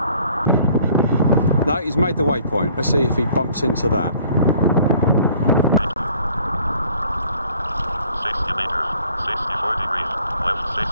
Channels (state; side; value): inverted; both; correlation -0.57